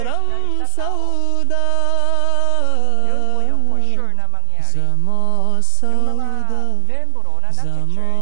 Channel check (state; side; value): different; both; correlation 0.00